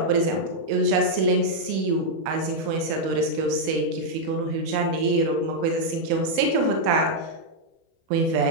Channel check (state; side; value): late; left; 31 ms